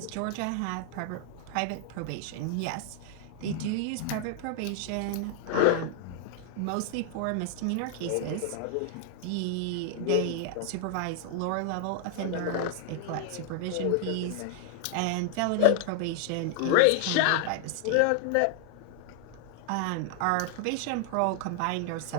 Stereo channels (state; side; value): different; both; correlation 0.00